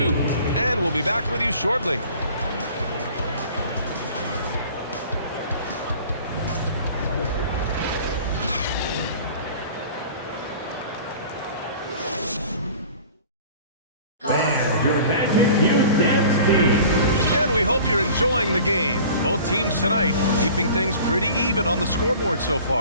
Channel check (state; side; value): inverted; both; correlation -0.44